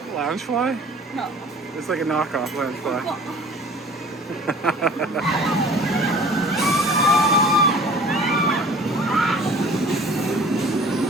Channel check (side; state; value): both; normal; correlation 0.46